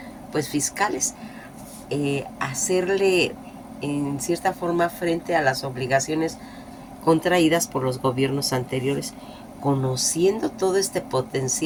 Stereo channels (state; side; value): identical; both; correlation 1.00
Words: pues fiscales, hacerle en cierta forma frente a las obligaciones contraídas por los gobiernos anteriores. Conociendo todo este